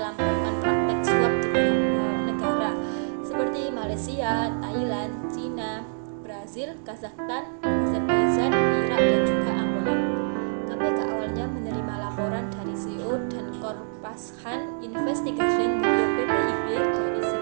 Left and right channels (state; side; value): silent; left; digital silence